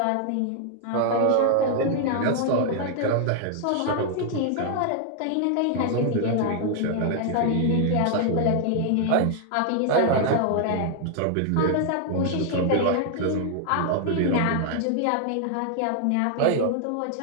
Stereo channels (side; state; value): both; different; correlation 0.00